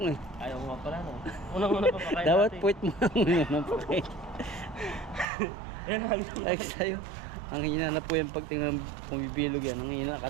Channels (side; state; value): left; drops out; at 5.2 s